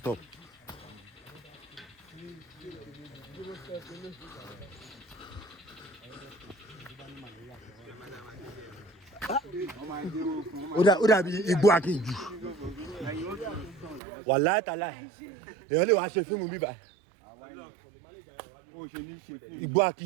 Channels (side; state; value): left; drops out; at 14.0 s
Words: Ó dàbí igbó akínjù. Wàláhì tàláhì. Èèyàn lè wá ṣe fíìmù bíbá. Igbó